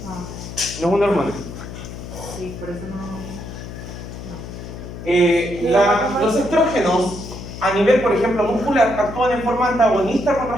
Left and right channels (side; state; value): left; noise; hum, 11 dB below the sound